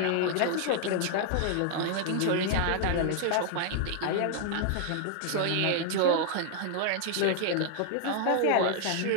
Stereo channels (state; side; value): different; both; correlation 0.00